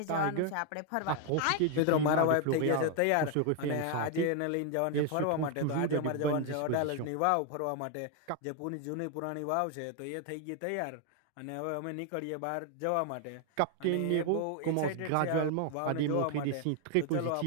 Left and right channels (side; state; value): both; different; correlation 0.01